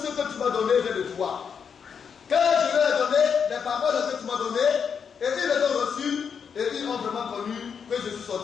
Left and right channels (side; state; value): right; quieter; 6.8 dB